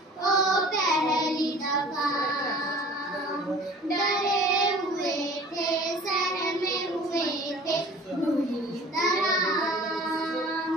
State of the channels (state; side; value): normal; both; correlation 0.45